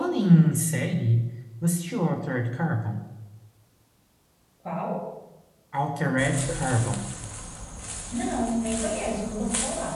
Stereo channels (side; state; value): both; identical; correlation 1.00